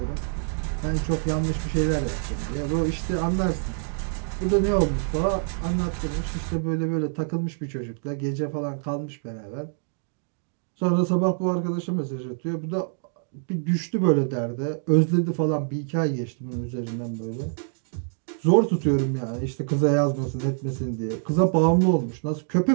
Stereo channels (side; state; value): left; silent; digital silence